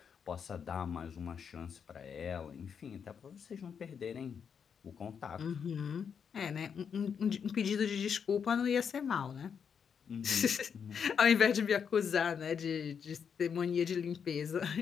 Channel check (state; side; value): quieter; right; 7.0 dB